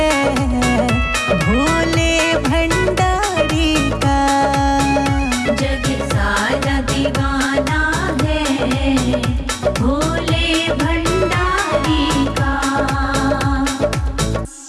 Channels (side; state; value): both; identical; correlation 1.00